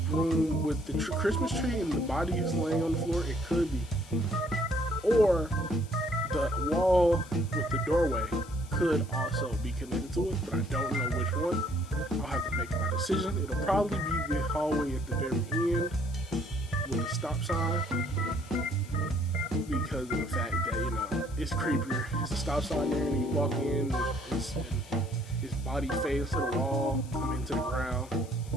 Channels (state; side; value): noise; left; hiss, 22 dB below the sound